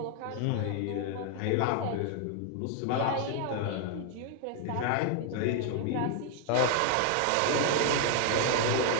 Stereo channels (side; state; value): both; different; correlation 0.00